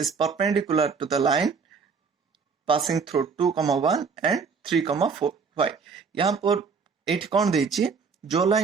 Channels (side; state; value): left; quieter; 5.4 dB